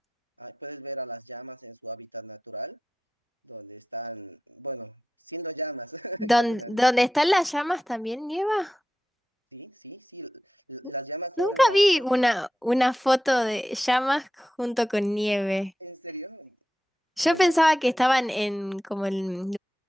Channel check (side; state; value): both; normal; correlation 0.91